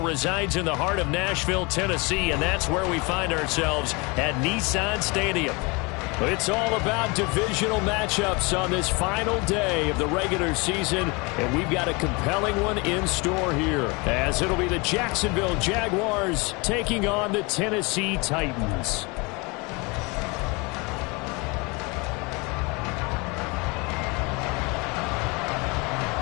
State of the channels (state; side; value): quieter; right; 27.8 dB